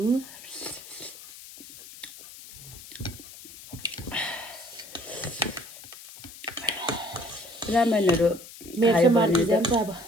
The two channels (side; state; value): left; noise; hiss, 16 dB below the sound